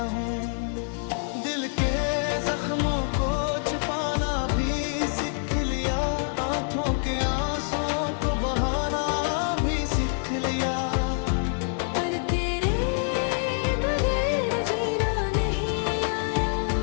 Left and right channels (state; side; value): silent; right; 58 dB below the other